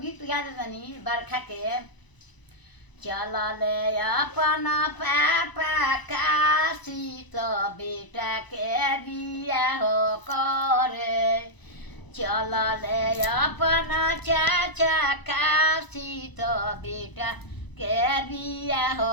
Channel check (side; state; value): right; late; 1.0 ms